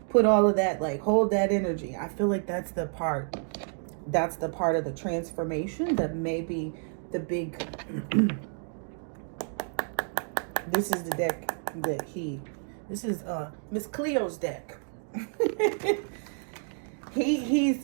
Put all of that, like hold that energy. I feel like that's the part of the transformation that may be the big this is the deck that this is Miss Cleo's deck.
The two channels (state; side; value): silent; left; 58 dB below the other